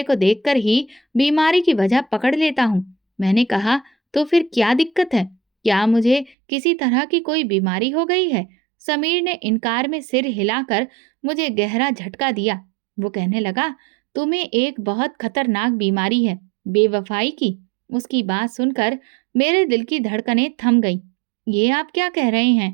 को देखकर ही बीमारी की वजह पकड़ लेता हूँ। मैंने कहा, तो फिर क्या दिक्कत है? क्या मुझे किसी तरह की कोई बीमारी हो गई है? समीर ने इनकार में सिर हिलाकर मुझे गहरा झटका दिया। वो कहने लगा, तुम्हें एक बहुत खतरनाक बीमारी है, बेवफाई की। उसकी बात सुनकर मेरे दिल की धड़कनें थम गई। ये आप क्या कह रहे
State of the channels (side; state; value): left; drops out; at 6.4 s